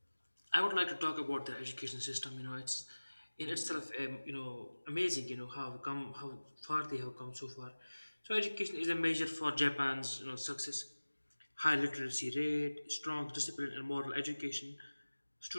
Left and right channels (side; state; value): both; inverted; correlation -1.00